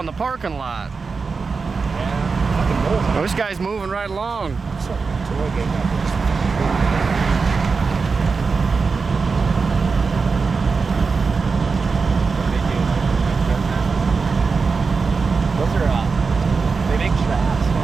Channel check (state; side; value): quieter; left; 4.7 dB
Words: the parking lot. Well, this guy's moving right along.